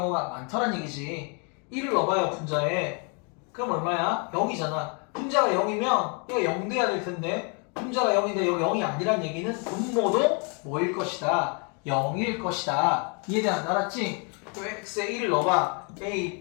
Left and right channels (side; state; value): right; quieter; 36.1 dB